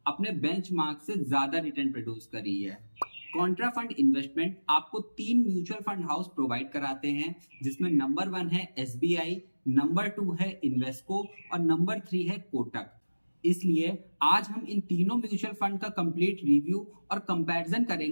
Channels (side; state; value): both; inverted; correlation -1.00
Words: अपने बेंचमार्क से ज्यादा रिटर्न प्रोड्यूस करी है। कॉन्ट्रा फंड इन्वेस्टमेंट आपको 3 म्यूचुअल फंड हाउस प्रोवाइड कराते हैं, जिसमें नंबर 1 है एसबीआई, नंबर 2 है इन्वेस्को और नंबर 3 है कोटक। इसलिए आज हम इन तीनों म्यूचुअल फंड का कंप्लीट रिव्यू और कंपैरिजन